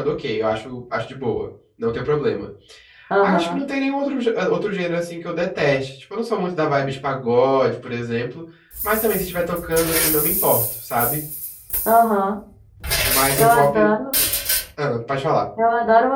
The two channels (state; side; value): identical; both; correlation 1.00